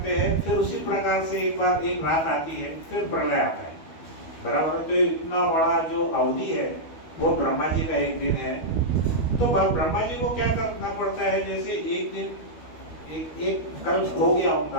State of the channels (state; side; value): late; right; 12 ms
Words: हैं? फिर उसी प्रकार से एक बार एक रात आती है, फिर प्रलय आता है, बराबर है। तो इतना बड़ा जो अवधि है वो ब्रह्मा जी का एक दिन है। तो ब्रह्मा जी को क्या करना पड़ता है? जैसे एक दिन एक कल्प हो गया,